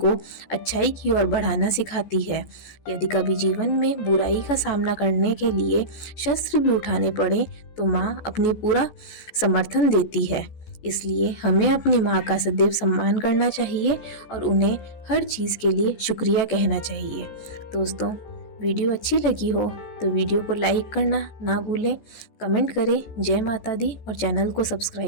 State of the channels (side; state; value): right; late; 14 ms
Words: अच्छाई की ओर बढ़ाना सिखाती है। यदि कभी जीवन में बुराई का सामना करने के लिए शस्त्र भी उठाने पड़े तो माँ अपनी पूरा समर्थन देती है। इसलिए हमें अपनी माँ का सदैव सम्मान करना चाहिए और उन्हें हर चीज़ के लिए शुक्रिया कहना चाहिए। दोस्तों, वीडियो अच्छी लगी हो तो वीडियो को लाइक करना ना भूलें, कमेंट करें जय माता दी और चैनल को